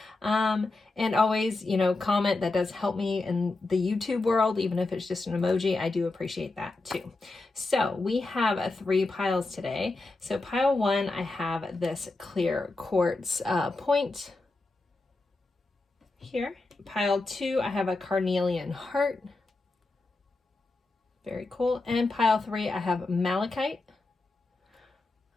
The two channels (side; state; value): right; quieter; 3.3 dB